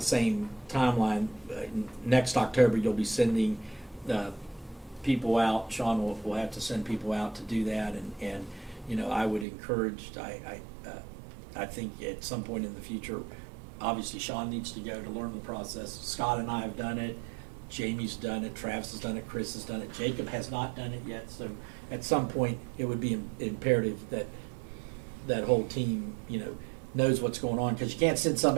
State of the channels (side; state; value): left; drops out; at 9.5 s